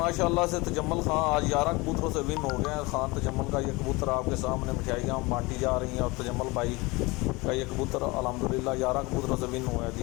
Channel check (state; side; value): quieter; right; 24.0 dB